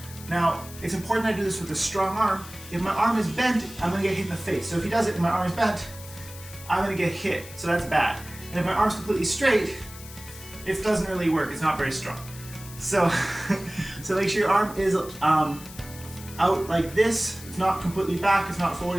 Now, it's important I do this with a strong arm. If my arm is bent, I'm going to get hit in the face. So if he does it and my arm is bent, I'm going to get hit. So that's bad. And if my arm's completely straight, it doesn't really work. It's not very strong. So, so make sure your arm is out like this. It's not completely back. It's not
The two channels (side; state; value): left; noise; hiss, 16 dB below the sound